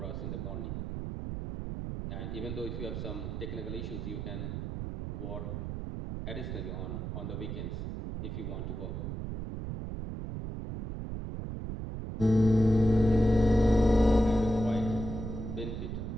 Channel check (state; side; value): noise; right; rumble, 5 dB below the sound